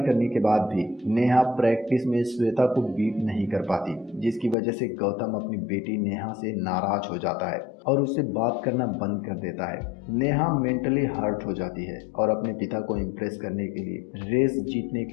करने के बाद भी नेहा प्रैक्टिस में श्वेता को बीट नहीं कर पाती, जिसकी वजह से गौतम अपनी बेटी नेहा से नाराज हो जाता है और उससे बात करना बंद कर देता है। नेहा मेंटली हर्ट हो जाती है और अपने पिता को इम्प्रेस करने के लिए रेस जीतने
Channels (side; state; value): right; drops out; at 4.5 s